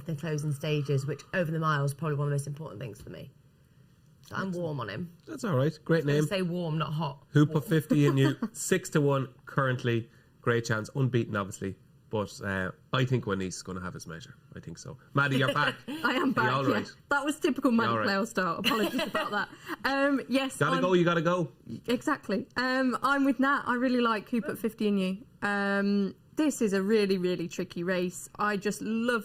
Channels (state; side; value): identical; both; correlation 1.00